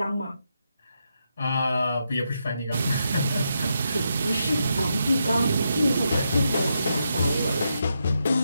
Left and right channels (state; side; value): inverted; both; correlation -0.83